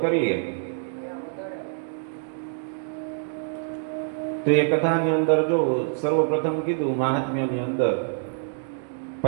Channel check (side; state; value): left; silent; digital silence